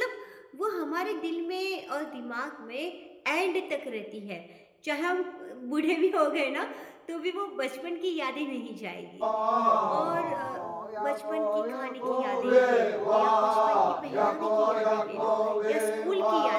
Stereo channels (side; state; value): both; identical; correlation 1.00